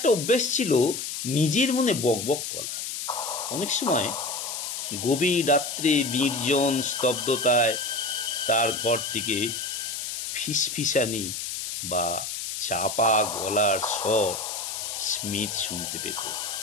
অভ্যেস ছিল নিজের মনে বকবক করা। অনেক সময় গভীর রাত্রে নির্জন স্তব্ধতায় তার ঘর থেকে ফিসফিসানি বা চাপা গলার স্বর স্মিথ শুনতে পেত।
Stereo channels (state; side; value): noise; left; hiss, 5 dB below the sound